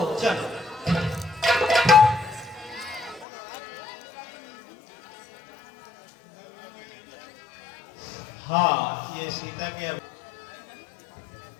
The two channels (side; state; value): right; drops out; at 3.2 s